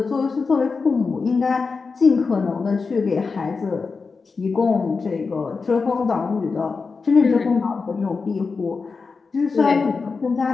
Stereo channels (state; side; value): quieter; right; 4.6 dB